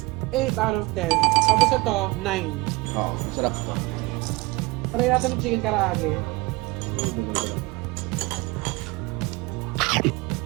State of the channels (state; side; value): quieter; left; 22.9 dB